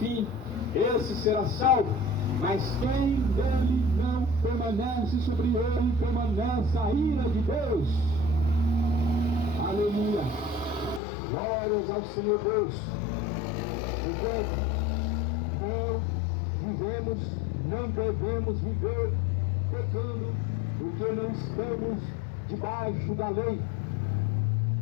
esse será salvo. Mas quem dele não permanece, sobre ele permanece a ira de Deus. Aleluia. Glórias ao Senhor Deus. Enquanto não devemos viver pecando, porque não estamos debaixo da lei.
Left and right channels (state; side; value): drops out; right; at 11.0 s